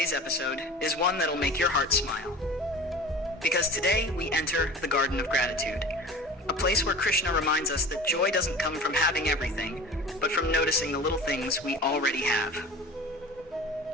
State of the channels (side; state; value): both; normal; correlation 0.38